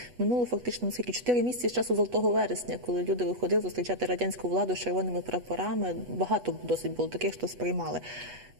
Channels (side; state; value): left; late; 8.2 ms